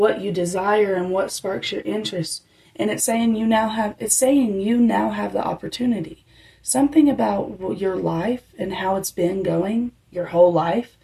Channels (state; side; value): identical; both; correlation 1.00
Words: you desire and what sparks your interest. And it's saying you now have the opportunity. Something about your life and how it's been going your whole life,